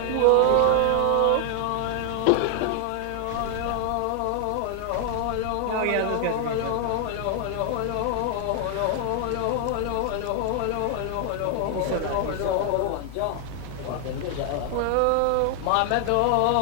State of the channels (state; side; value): different; both; correlation 0.00